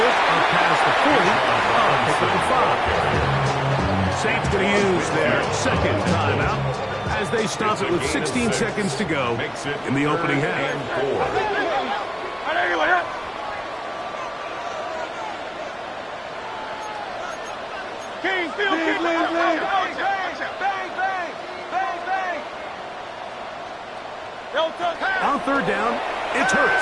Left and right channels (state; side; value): identical; both; correlation 1.00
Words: up past the 40. Pick up the 5. Saints going to use their 2nd timeout as they stop it with 16 seconds to go in the opening half. On 3rd down, it's